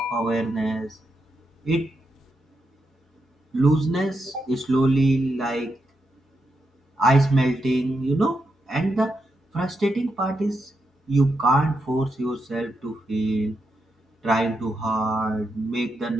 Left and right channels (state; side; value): normal; both; correlation 0.84